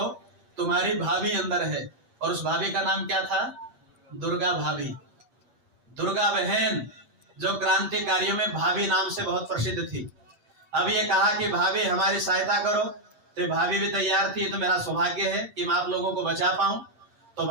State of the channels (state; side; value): late; left; 8.6 ms